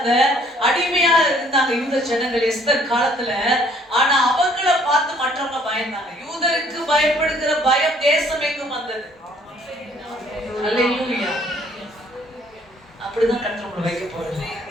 அடிமையா இருந்தாங்க யூத ஜனங்கள் எஸ்தர் காலத்துல. ஆனா அவங்கள பார்த்து மற்றவங்க பயந்தாங்க. யூதருக்கு பயப்படுகிற பயம் தேசம் எங்கும் வந்தது. அல்லேலூயா. அப்படிதான் கர்த்தர் உங்களை வைக்க போறாரு.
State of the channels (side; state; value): both; normal; correlation 0.61